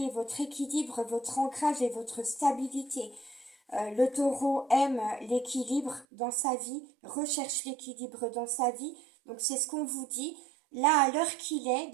votre équilibre, votre ancrage et votre stabilité. Le taureau aime l'équilibre dans sa vie, recherche l'équilibre dans sa vie. Donc c'est ce qu'on vous dit. Là, à l'heure qu'il est,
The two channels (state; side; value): drops out; left; at 6.1 s